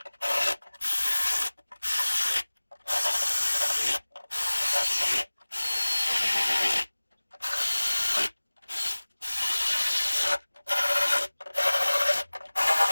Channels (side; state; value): both; inverted; correlation -1.00